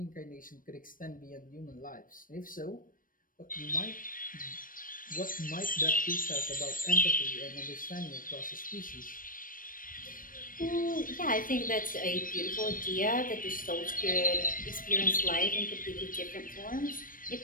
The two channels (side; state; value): right; late; 0.40 ms